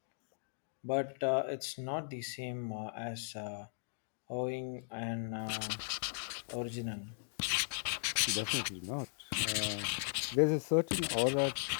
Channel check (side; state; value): right; silent; digital silence